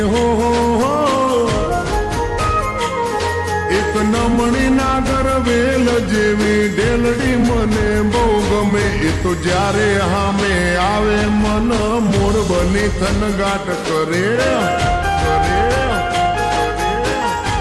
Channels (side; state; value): both; identical; correlation 1.00